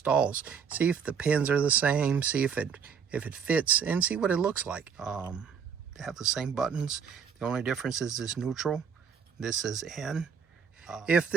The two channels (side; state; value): left; quieter; 6.8 dB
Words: See if the pins are the same. See if it fits, and see what it looks like. They have the same buttons. The only difference is this neutral. This is N. If